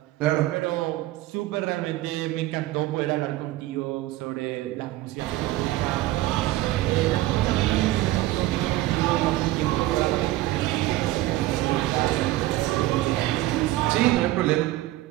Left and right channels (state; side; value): quieter; left; 16.6 dB